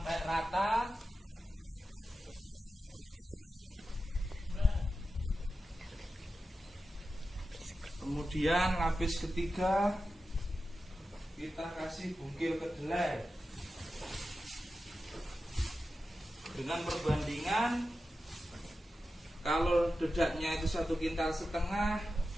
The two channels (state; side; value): normal; both; correlation 0.92